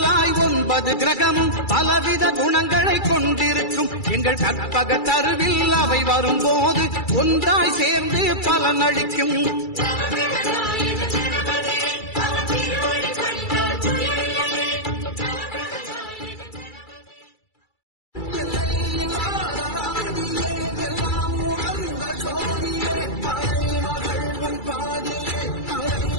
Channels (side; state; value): right; late; 2.3 ms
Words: 9 கிரகமும் பலவித குணங்களை கொண்டிருக்கும் எங்கள் கற்பக தருவில் அவை வரும்போது ஒன்றாய் சேர்ந்து பலனளிக்கும்.